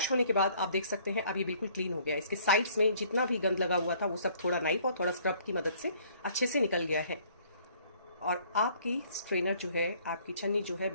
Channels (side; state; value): both; inverted; correlation -0.59